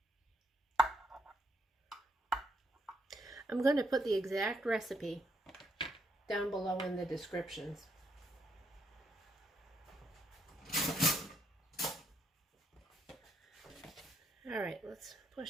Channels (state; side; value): normal; both; correlation 0.74